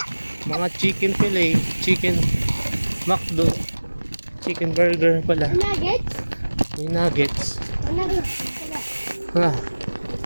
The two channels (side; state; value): both; inverted; correlation -1.00